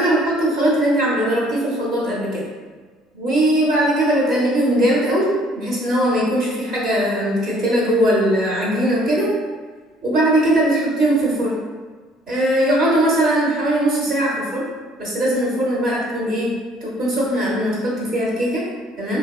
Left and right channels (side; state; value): both; normal; correlation 0.60